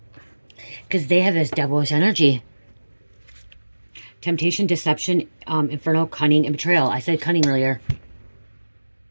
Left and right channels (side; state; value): both; inverted; correlation -1.00